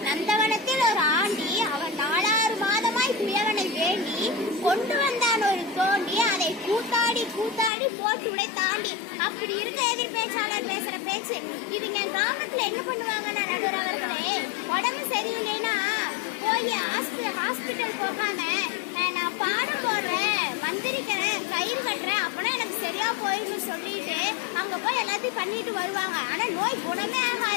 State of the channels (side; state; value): right; drops out; at 7.7 s